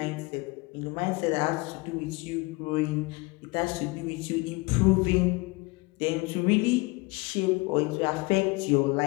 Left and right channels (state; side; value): quieter; right; 24.8 dB